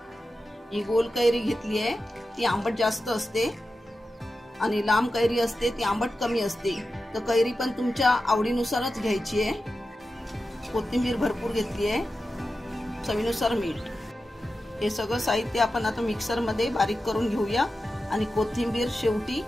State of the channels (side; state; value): both; normal; correlation 0.92